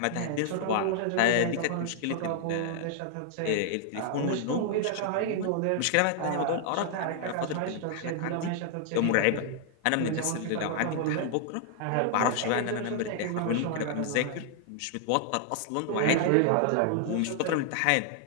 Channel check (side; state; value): both; different; correlation 0.00